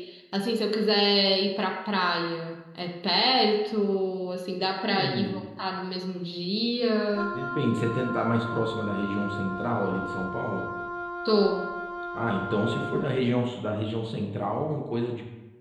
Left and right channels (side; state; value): both; identical; correlation 1.00